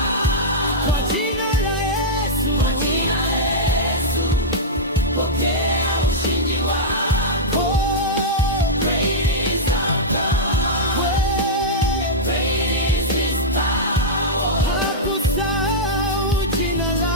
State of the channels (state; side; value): normal; both; correlation -0.09